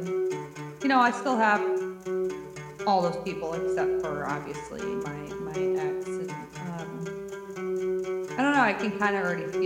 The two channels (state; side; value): identical; both; correlation 1.00